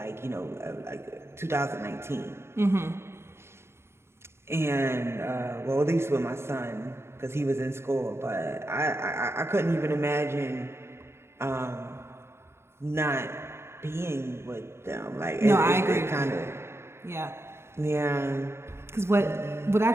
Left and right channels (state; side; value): late; left; 0.12 ms